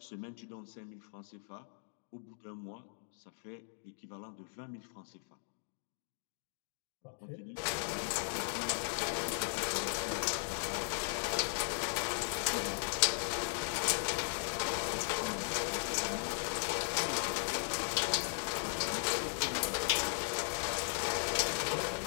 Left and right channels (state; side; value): silent; right; digital silence